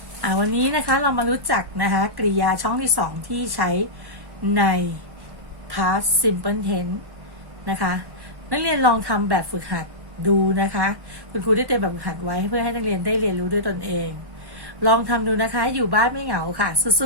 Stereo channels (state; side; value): late; left; 1.1 ms